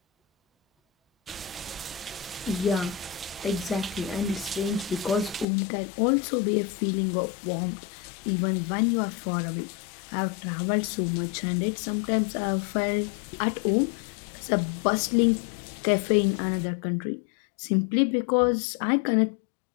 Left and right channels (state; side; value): drops out; right; at 5.5 s